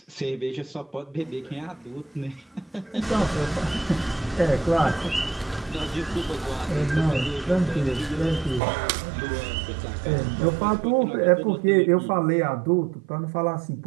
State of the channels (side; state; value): left; drops out; at 8.6 s